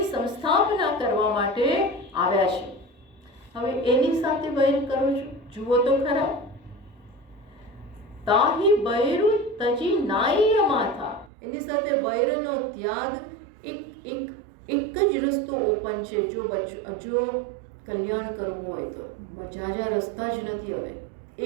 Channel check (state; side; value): drops out; left; at 11.3 s